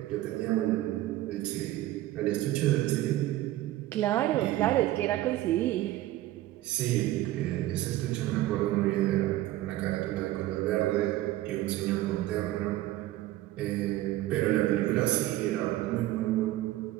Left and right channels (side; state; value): left; quieter; 15.5 dB